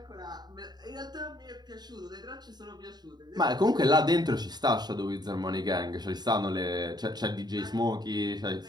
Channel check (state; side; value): late; left; 0.20 ms